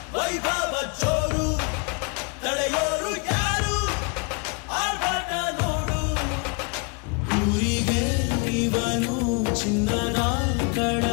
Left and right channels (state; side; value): quieter; right; 33.5 dB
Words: ವೈಭವ ಜೋರು ತಡೆಯೋರು ಯಾರು ಆರ್ಭಟ ನೋಡು ಊರಿಗೆ ಇವನು ಚಿನ್ನದ